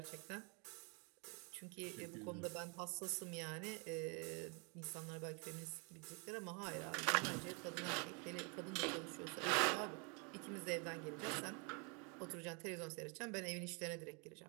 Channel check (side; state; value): left; quieter; 34.5 dB